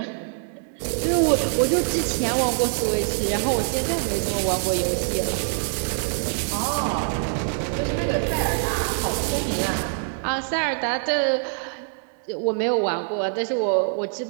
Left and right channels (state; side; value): silent; left; 62 dB below the other